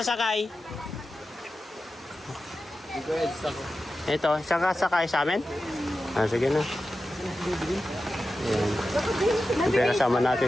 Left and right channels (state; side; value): normal; both; correlation 0.92